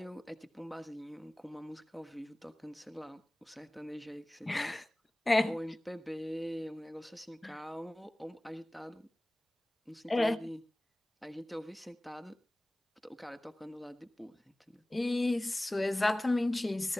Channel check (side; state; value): both; normal; correlation 0.98